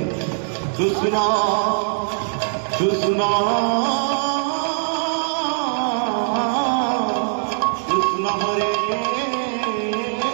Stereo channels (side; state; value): left; silent; digital silence